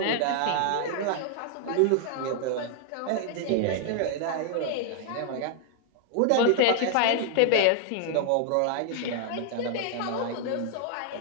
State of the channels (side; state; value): both; different; correlation 0.00